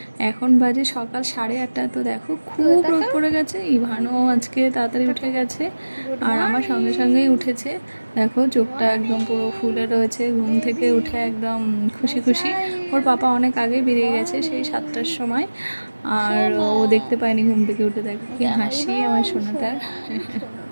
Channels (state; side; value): inverted; both; correlation -1.00